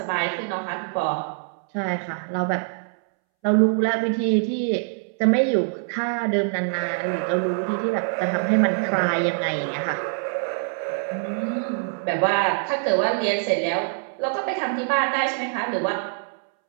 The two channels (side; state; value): left; silent; 62 dB below the other